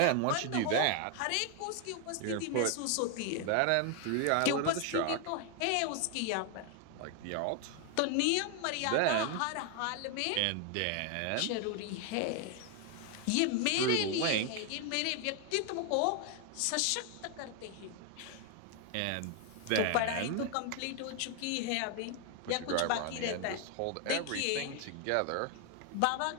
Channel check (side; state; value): both; different; correlation 0.00